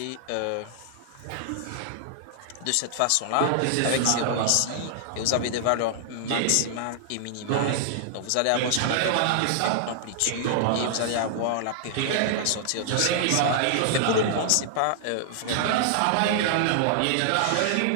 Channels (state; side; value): different; both; correlation -0.01